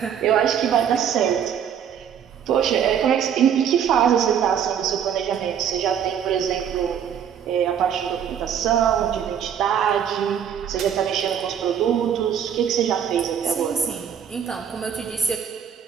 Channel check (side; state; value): left; quieter; 8.5 dB